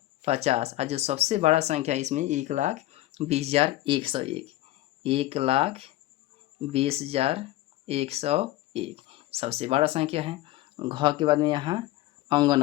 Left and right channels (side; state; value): right; quieter; 16.3 dB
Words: 50 और जो सबसे बड़ा संख्या इसमें 1,20,101, 1,20,101 सबसे बड़ा संख्या है। घ के बाद में यहाँ अंग